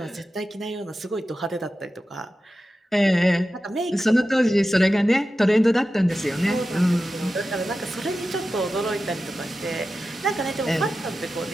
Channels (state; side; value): normal; both; correlation 0.93